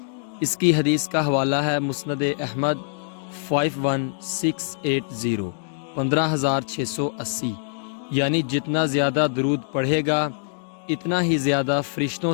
اس کی حدیث کا حوالہ ہے مسند احمد 51680 15680، یعنی جتنا زیادہ درود پڑھے گا اتنا ہی زیادہ فرشتوں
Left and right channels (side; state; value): right; silent; digital silence